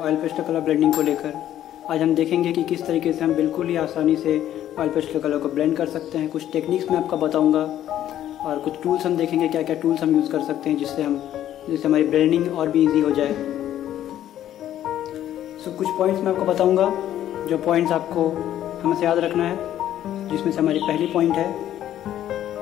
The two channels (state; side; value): quieter; right; 11.8 dB